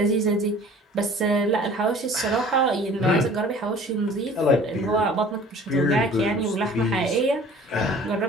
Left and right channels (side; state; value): both; normal; correlation 0.48